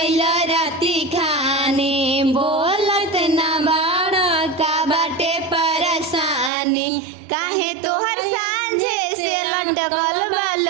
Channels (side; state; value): left; drops out; at 6.5 s